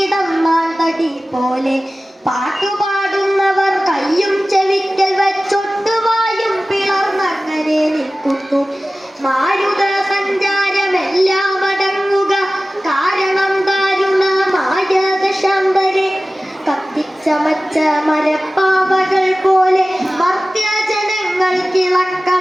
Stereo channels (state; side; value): normal; both; correlation 0.96